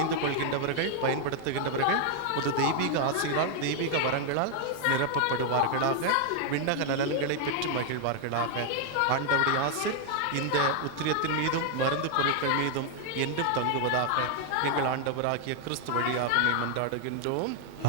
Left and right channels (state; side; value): different; both; correlation 0.00